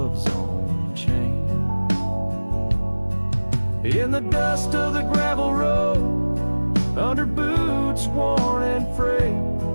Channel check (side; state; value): both; inverted; correlation -1.00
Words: own chain. In the dust of the gravel road, under boots worn and frayed,